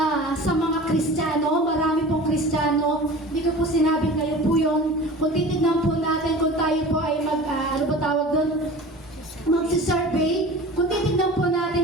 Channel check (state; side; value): normal; both; correlation 0.38